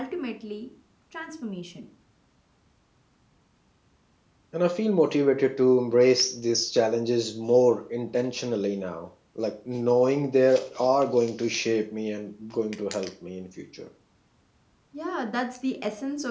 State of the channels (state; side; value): identical; both; correlation 1.00